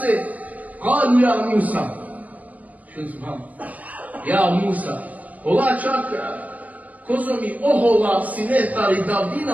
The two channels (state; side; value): late; left; 0.075 ms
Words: kalu ja Musa. Što znam? Ja Musa. Allah čak, kozo mi ohola sinetari